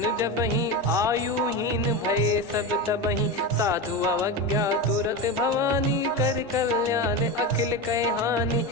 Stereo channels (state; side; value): noise; left; hum, 29 dB below the sound